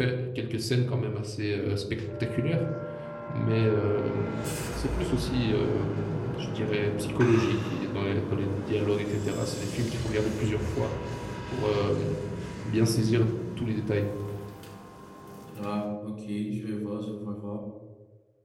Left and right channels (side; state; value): both; identical; correlation 1.00